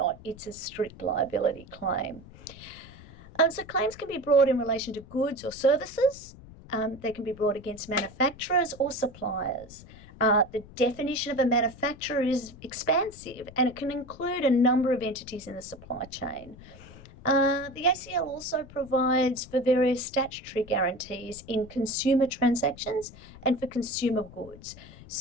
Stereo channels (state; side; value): noise; left; rumble, 19 dB below the sound